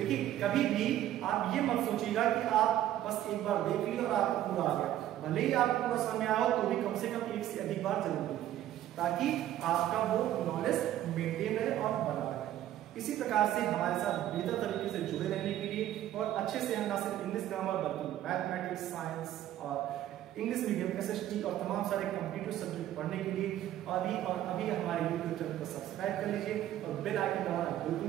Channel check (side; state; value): left; quieter; 12.7 dB